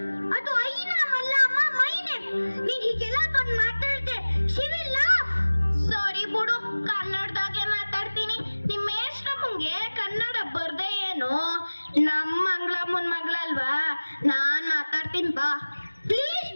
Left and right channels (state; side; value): inverted; both; correlation -1.00